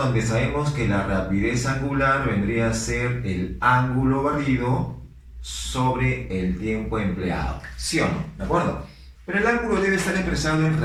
sabemos que la rapidez angular vendría a ser el ángulo barrido sobre el tiempo empleado. ¿Sí o no? ¿De acuerdo? Pero el ángulo debe estar expresado en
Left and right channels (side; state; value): both; identical; correlation 1.00